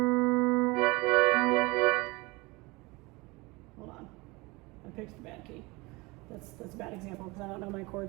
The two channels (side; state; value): left; quieter; 24.3 dB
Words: on. I picked the bad key. That's a bad example because I don't know my